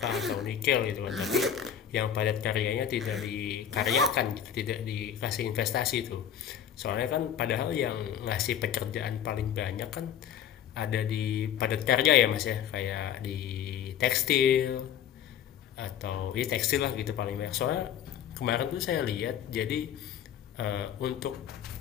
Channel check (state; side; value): quieter; right; 9.3 dB